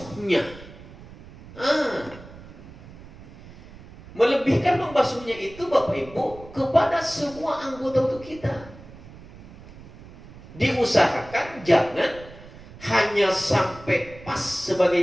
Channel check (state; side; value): noise; right; rumble, 18 dB below the sound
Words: Melebihkan membasuhnya itu Bapak Ibu kepada semua anggota tubuh kita. Diusahakan jangan hanya sampai pas